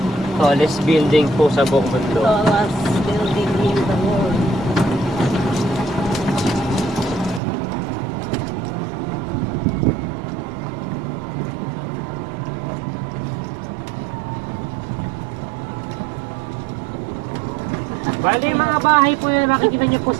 Tallest building po sa buong mundo. Tallest building in the world. Bali, mga bahay po na makikita niyo po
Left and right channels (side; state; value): left; drops out; at 7.4 s